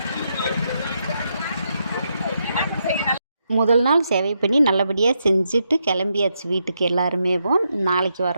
முதல் நாள் சேவை பண்ணி நல்லபடியாக செஞ்சுட்டு கிளம்பியாச்சு வீட்டுக்கு. எல்லாருமேவும் நாளைக்கு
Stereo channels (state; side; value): inverted; both; correlation -0.82